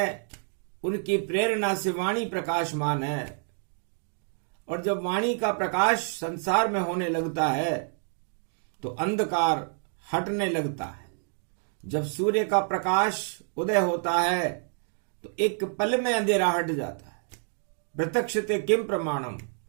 उनकी प्रेरणा से वाणी प्रकाशमान है। और जब वाणी का प्रकाश संसार में होने लगता है तो अंधकार हटने लगता है। जब सूर्य का प्रकाश उदय होता है तो एक पल में अंधेरा हट जाता है। प्रत्यक्षते किम प्रमाणम,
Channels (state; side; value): silent; left; 55 dB below the other